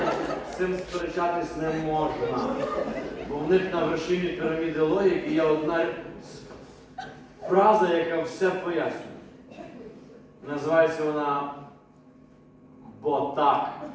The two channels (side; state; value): both; identical; correlation 1.00